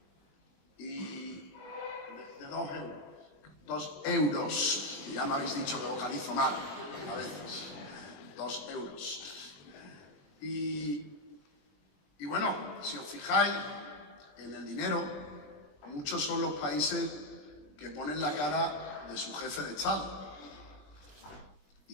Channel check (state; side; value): late; right; 21 ms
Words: Y de 2 euros. 2 euros. Y ya me habéis dicho que vocalizo mal a veces. 2 euros. Y bueno, si os fijáis en el dinero, muchos son los países que ponen la cara de su jefe de Estado.